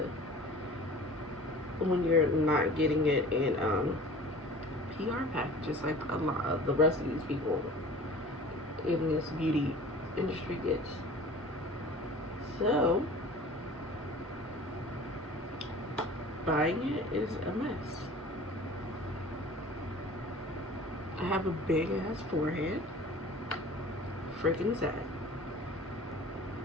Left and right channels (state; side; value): normal; both; correlation 0.43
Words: when you're not getting it in PR packages like a lot of the rest of these people in this beauty industry gets. So buying it is a mess. I have a big ass forehead. Freaking sad.